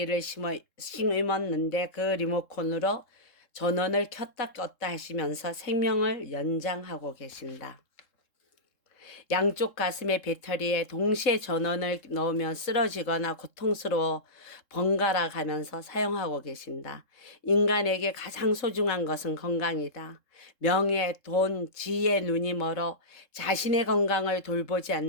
심었는데 그 리모컨으로 전원을 켰다 껐다 하시면서 생명을 연장하고 계신다. 양쪽 가슴의 배터리에 동시에 전원을 넣으면 쓰러지거나 고통스러워 번갈아 가면서 사용하고 계신다. 인간에게 가장 소중한 것은 건강이다. 명예, 돈, 지혜의 눈이 멀어 자신의 건강을 돌보지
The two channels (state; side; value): late; right; 3.7 ms